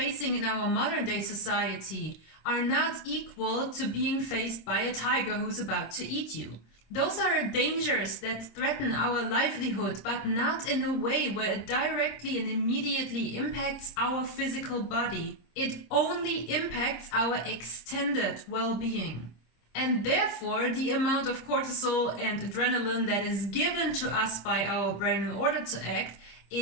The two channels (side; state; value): right; late; 26 ms